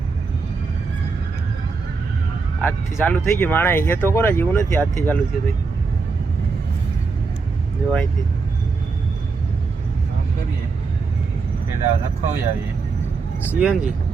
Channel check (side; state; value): left; quieter; 4.5 dB